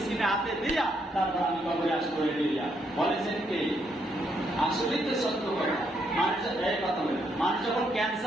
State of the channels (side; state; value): both; normal; correlation 0.75